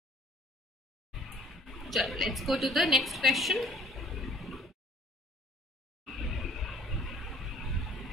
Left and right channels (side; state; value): both; normal; correlation 0.55